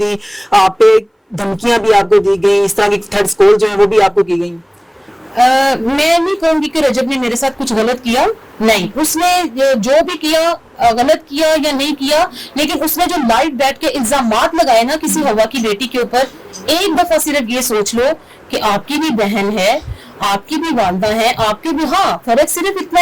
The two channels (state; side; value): identical; both; correlation 1.00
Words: आप पे धमकियां भी आपको दी गई, इस तरह की थ्रेड्स कॉल जो है वो भी आपको की गई? मैं नहीं कहूंगी कि रजब ने मेरे साथ कुछ गलत किया, नहीं। उसने जो भी किया, गलत किया या नहीं किया, लेकिन उसने जो लाइव बैठ के इल्जामात लगाए ना किसी हवा की बेटी के ऊपर, एक दफा सिर्फ ये सोच लो कि आपकी भी बहन है, आपकी भी वालदा है, आपकी भी, हाँ फर्क सिर्फ इतना